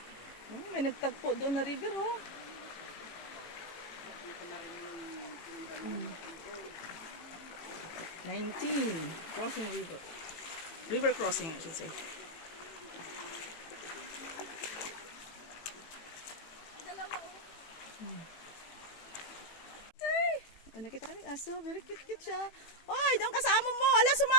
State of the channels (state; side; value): late; right; 18 ms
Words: Oh, may nagtagpo doon na river, oh. 19 crossing river crossing I should say. Ay, nakita kami aso, very cute siya. Oy, doon kasama mo, ala